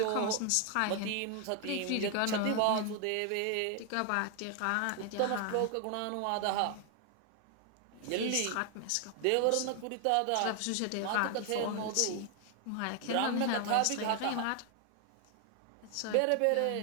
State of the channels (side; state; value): both; different; correlation 0.00